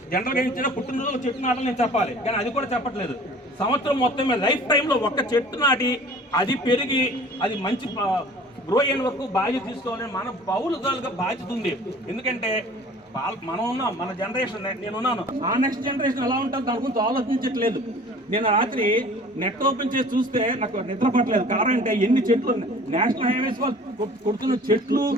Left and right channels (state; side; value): normal; both; correlation 0.47